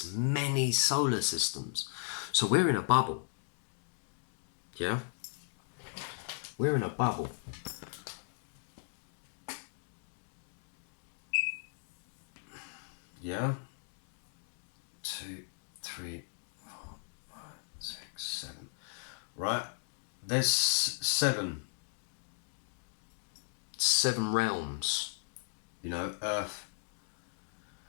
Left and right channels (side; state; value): right; silent; digital silence